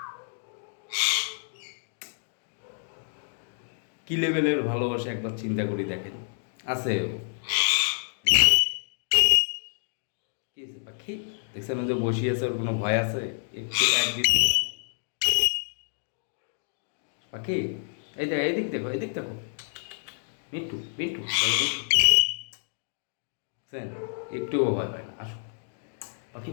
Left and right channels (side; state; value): right; silent; 59 dB below the other